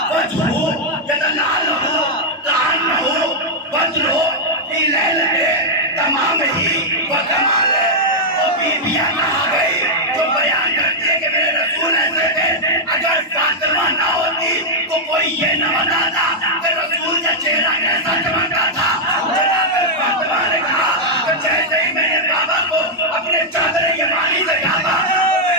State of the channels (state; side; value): normal; both; correlation -0.04